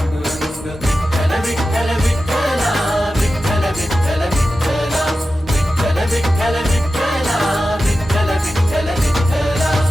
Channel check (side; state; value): both; normal; correlation 0.93